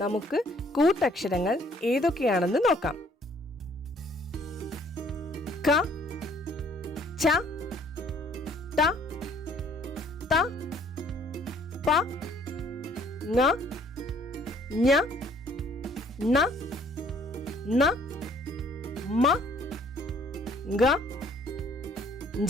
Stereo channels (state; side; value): normal; both; correlation 0.60